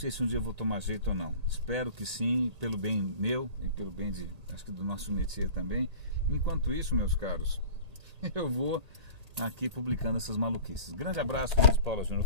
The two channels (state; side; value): late; left; 1.8 ms